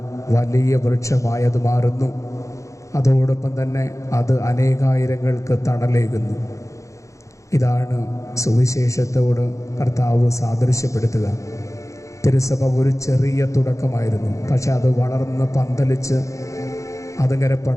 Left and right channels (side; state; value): right; late; 0.15 ms